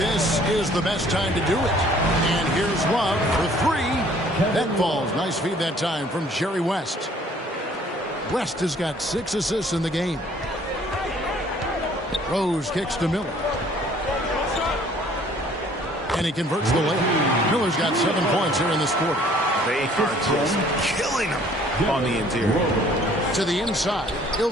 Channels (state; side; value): normal; both; correlation 0.57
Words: is the best time to do it. And here's Love for three. That falls. Nice feed that time from Jerry West. West has got 6 assists in the game. Rose kicks to Miller. And he converts the layup. Miller's got 7 points here in this quarter. They are just killing him on the interior. To the inside,